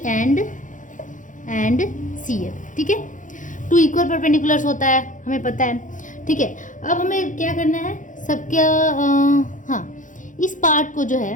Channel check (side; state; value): right; late; 0.37 ms